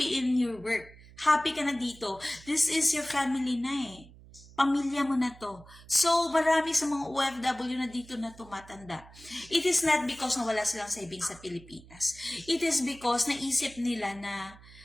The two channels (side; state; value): right; noise; hum, 21 dB below the sound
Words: in your work. Happy ka na dito. This is your family na eh. Pamilya mo na to. So, marami sa mga OFW na dito na tumatanda. It is not because na wala silang savings sa Pilipinas. It is because naisip nila na